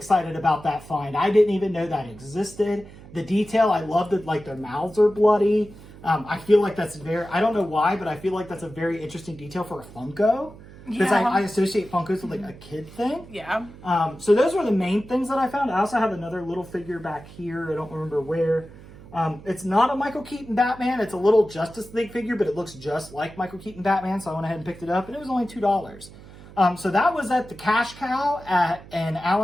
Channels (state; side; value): noise; right; hum, 19 dB below the sound